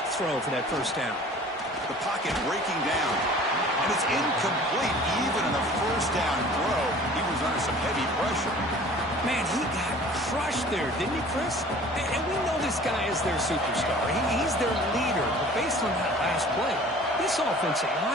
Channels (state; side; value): normal; both; correlation 0.47